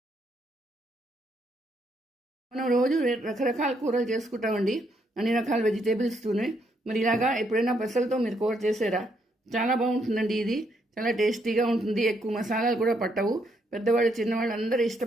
మనం రోజు రకరకాల కూరలు చేసుకుంటామండి, అన్ని రకాల వెజిటేబుల్స్తోనే. మరి ఇలాగా ఎప్పుడైనా పెసలతో మీరు కూర చేసారా? చాలా బాగుంటుందండి. ఇది చాలా టేస్టీగా ఉంటుంది. ఎక్కువ మసాలాలు కూడా పట్టవు. పెద్దవాళ్ళు చిన్నవాళ్ళు అందరూ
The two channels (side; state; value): both; normal; correlation 0.74